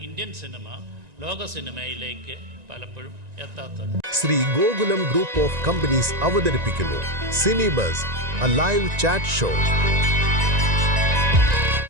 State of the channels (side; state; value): left; late; 1.9 ms